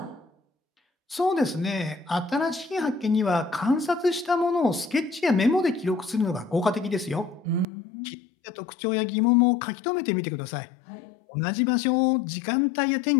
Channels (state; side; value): drops out; right; at 7.7 s